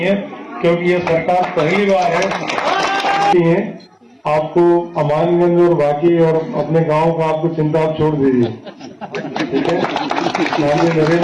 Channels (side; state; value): both; identical; correlation 1.00